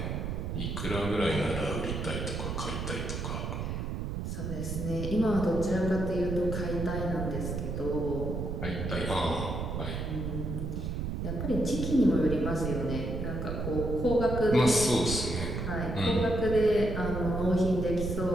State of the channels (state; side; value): noise; right; rumble, 3 dB below the sound